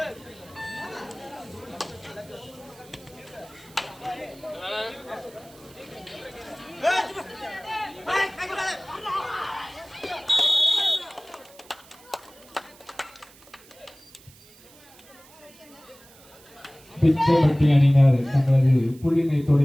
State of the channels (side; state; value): right; noise; hiss, 24 dB below the sound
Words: பிச்சைப்பட்டி அணியினர் தங்களது புள்ளினை